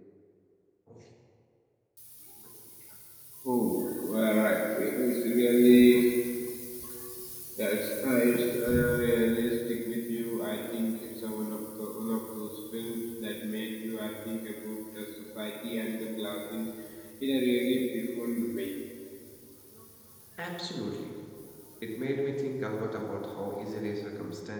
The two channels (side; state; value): both; identical; correlation 1.00